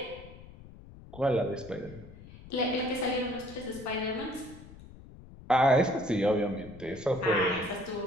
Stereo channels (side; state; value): left; noise; rumble, 18 dB below the sound